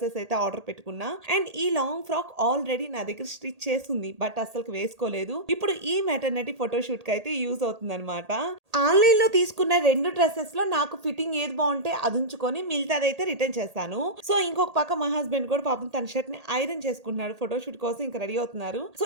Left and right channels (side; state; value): left; late; 1.8 ms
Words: అయితే ఆర్డర్ పెట్టుకున్నా. అండ్ ఈ లాంగ్ ఫ్రాక్ ఆల్రెడీ నా దగ్గర స్టిచ్ చేస్తుంది, బట్ అసలు వేసుకోలేదు. ఇప్పుడు ఈ మెటర్నిటీ ఫోటోషూట్ కి అయితే యూజ్ అవుతుంది అనమాట. ఆన్లైన్ లో తీసుకున్న 2 డ్రెస్సెస్ లో నాకు ఫిట్టింగ్ ఏది బాగుంటే అది ఉంచుకొని మిగతాదైతే రిటర్న్ చేస్తాను. సో ఇంకొక పక్క మా హస్బెండ్ కూడా పాపం తన షర్ట్ ని ఐరన్ చేసుకుంటున్నాడు. ఫోటోషూట్ కోసం ఇంకా రెడీ అవుతున్నారు. సో